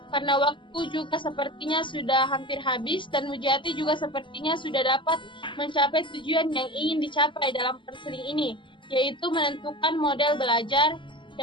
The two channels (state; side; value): late; right; 0.24 ms